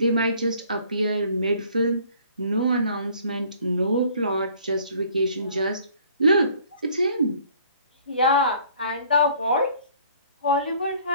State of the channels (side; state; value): both; inverted; correlation -0.56